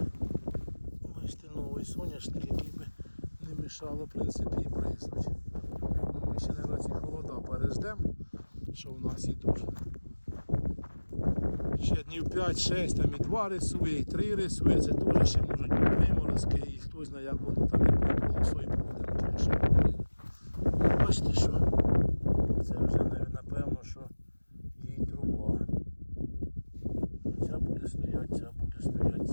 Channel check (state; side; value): inverted; both; correlation -1.00